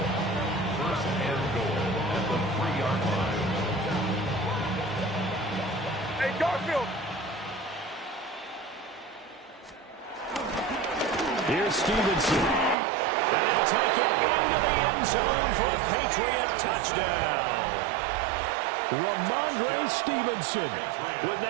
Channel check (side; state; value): left; drops out; at 12.8 s